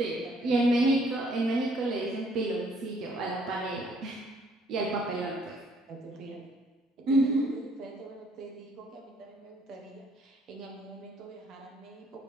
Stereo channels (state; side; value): normal; both; correlation 0.64